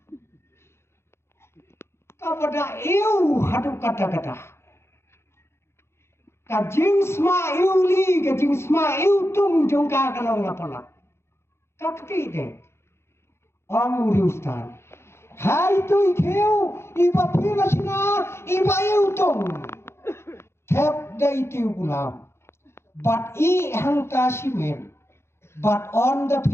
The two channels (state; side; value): late; right; 0.12 ms